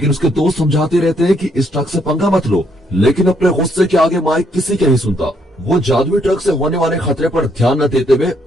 उसके दोस्त समझाते रहते हैं कि इस ट्रक से पंगा मत लो, लेकिन अपने गुस्से के आगे माइक किसी के नहीं सुनता। वो जादुई ट्रक से होने वाले खतरे पर ध्यान न देते हुए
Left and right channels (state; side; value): normal; both; correlation 0.72